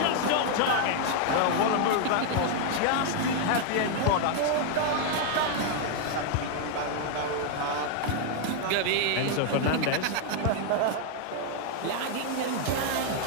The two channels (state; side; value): different; both; correlation 0.00